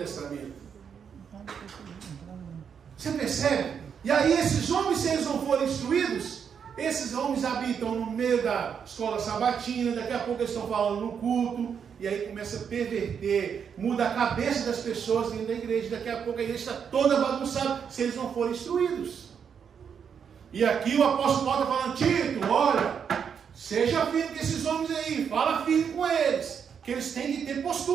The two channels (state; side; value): quieter; left; 7.3 dB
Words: Você percebe? E aí esses homens, se eles não forem instruídos, esses homens habitam no meio da escola sabatina, daqui a pouco eles estão falando no culto, e aí começa a perverter, muda a cabeça das pessoas dentro da igreja, daqui a pouco a igreja está toda bagunçada, se eles não forem instruídos. E aqui o apóstolo Paulo está falando, Tito, olha, seja firme com esses homens aí, fala firme com eles, que eles têm que ter